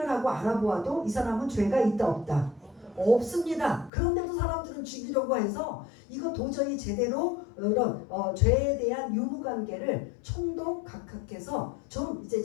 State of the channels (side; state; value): right; drops out; at 3.9 s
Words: 하고 알아보아도 이 사람은 죄가 있다 없다? 없습니다. 그런데도 사람들은 죽이려고 해서 이거 도저히 제대로 이런 죄에 대한 유무관계를 총독 각하께서 좀 이제